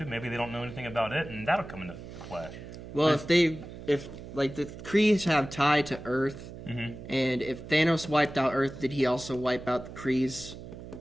maybe they don't know anything about it, and that'll come into play. Well, if the Krees have tie to Earth, and if Thanos wiped out Earth, did he also wipe out the Krees'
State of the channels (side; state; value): right; noise; hum, 13 dB below the sound